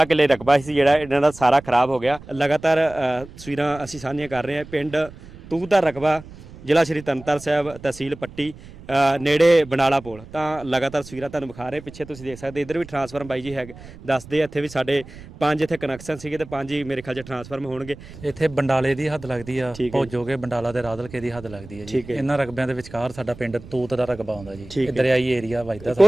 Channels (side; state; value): right; noise; rumble, 18 dB below the sound